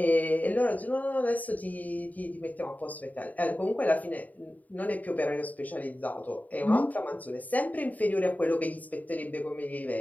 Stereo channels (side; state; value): right; late; 0.075 ms